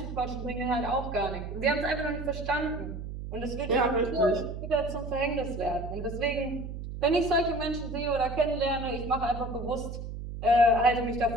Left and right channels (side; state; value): right; noise; hum, 8 dB below the sound